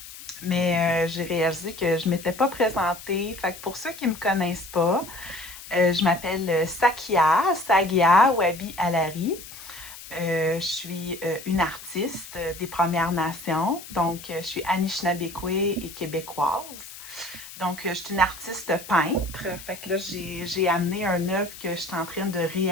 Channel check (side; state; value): left; noise; hiss, 15 dB below the sound